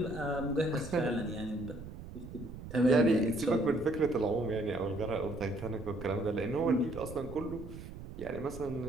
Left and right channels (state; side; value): noise; right; rumble, 12 dB below the sound